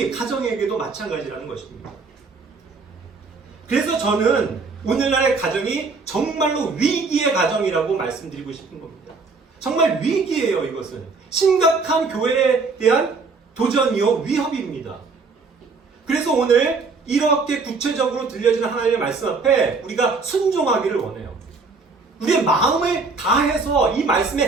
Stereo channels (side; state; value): left; quieter; 4.3 dB